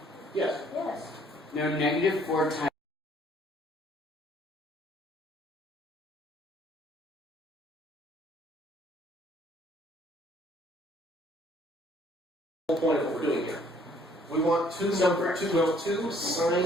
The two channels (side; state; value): both; normal; correlation 0.61